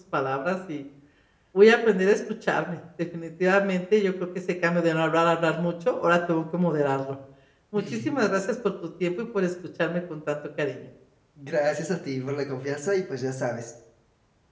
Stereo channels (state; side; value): identical; both; correlation 1.00